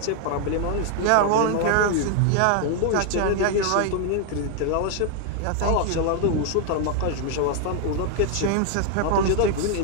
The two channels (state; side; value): different; both; correlation 0.00